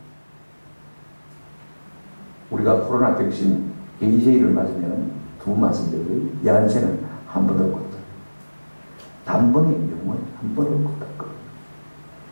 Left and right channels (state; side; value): inverted; both; correlation -1.00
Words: 우리가 코로나 백신 AJ를 맞으면 두 맞은데요, 야한새는 한 번으로 걷다. 단번에 영원, 한 번으로 걷다.